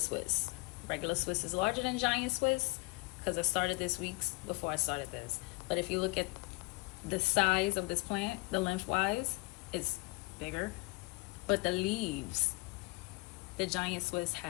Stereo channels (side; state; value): right; quieter; 26.2 dB